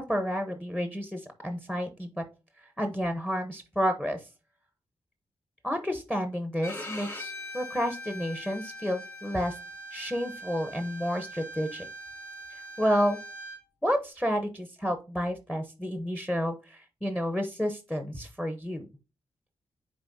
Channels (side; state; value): both; normal; correlation 0.88